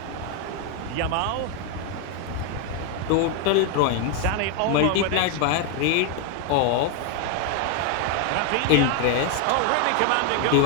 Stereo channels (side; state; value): both; different; correlation 0.01